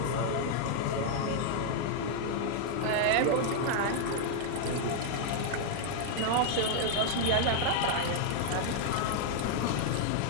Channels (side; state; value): both; different; correlation 0.00